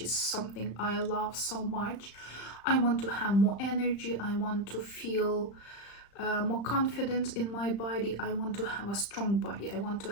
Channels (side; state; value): right; late; 35 ms